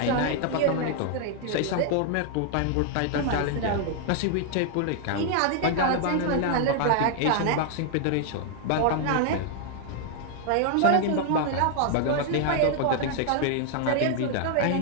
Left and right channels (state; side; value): different; both; correlation 0.00